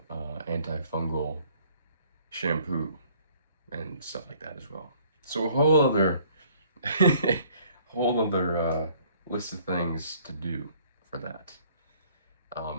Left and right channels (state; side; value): inverted; both; correlation -0.59